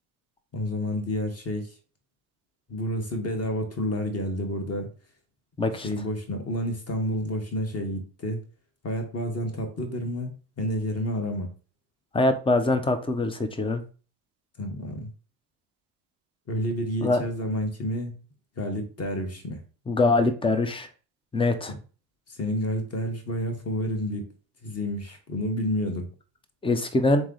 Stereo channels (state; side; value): normal; both; correlation 0.38